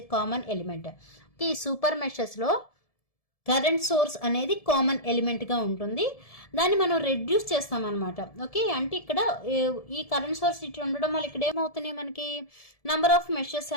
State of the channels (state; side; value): late; right; 1.7 ms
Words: a common element. Okay, ఈ సూపర్ మెషర్స్లో కరెంట్ సోర్స్ అనేది కామన్ ఎలిమెంట్గా ఉంటుంది. దాన్ని మనం రెడ్యూస్ చేస్తామన్నమాట. ఓకే, అంటే ఇక్కడ ఈ కరెంట్ సోర్స్ ఇట్లా ఉండడం వల్ల ఇక్కడ ఏమవుతున్నాయి, మనకి నంబర్ ఆఫ్ మెషర్స్